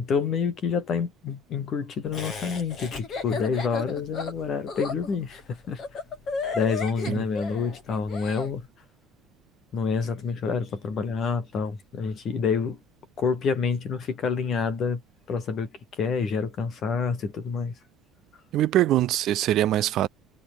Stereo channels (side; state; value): both; normal; correlation 0.49